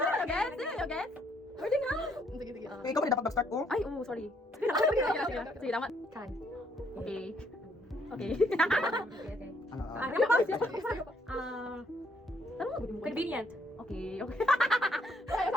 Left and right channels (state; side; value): normal; both; correlation 0.69